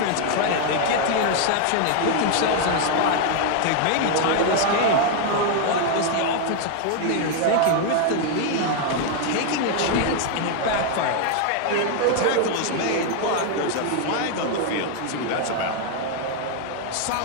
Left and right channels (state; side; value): different; both; correlation 0.00